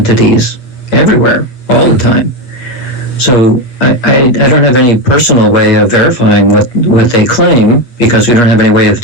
everywhere, all the time. So I don't have any personal way of verifying what they claim, because we don't have any way of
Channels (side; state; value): right; late; 8.3 ms